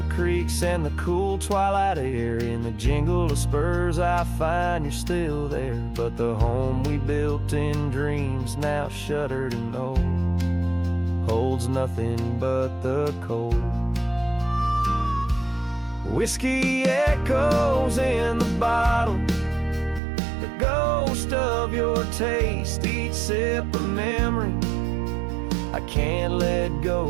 creeks and the cool twilight air. In the jingle of spurs I find you're still there, but the home we built in dreams, now shuttered and old, holds nothing but the cold. Whiskey echoes in the bottle, the ghost of your taste. Each sip a memory I can't let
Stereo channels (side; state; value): left; drops out; at 20.0 s